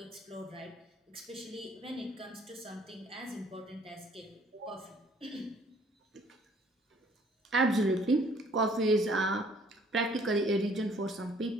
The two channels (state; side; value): normal; both; correlation 0.59